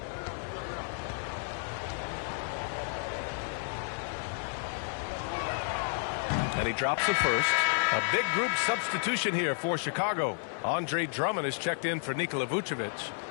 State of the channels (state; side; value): silent; right; 57 dB below the other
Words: And he drops it first. A big group substitution here for Chicago. Andre Drummond is checked in for Nikola